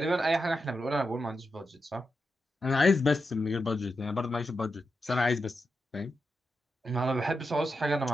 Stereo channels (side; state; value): both; normal; correlation 0.87